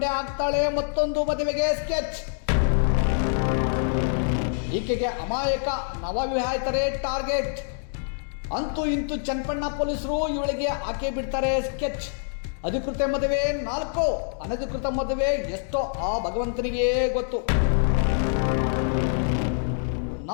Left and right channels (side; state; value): right; silent; digital silence